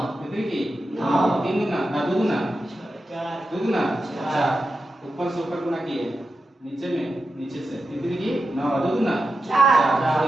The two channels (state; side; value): normal; both; correlation 0.90